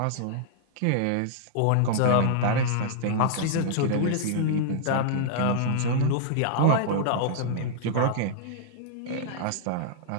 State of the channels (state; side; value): different; both; correlation -0.01